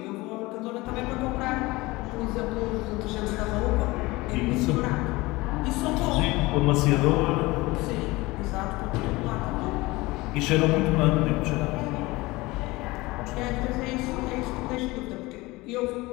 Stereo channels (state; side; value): quieter; right; 21.4 dB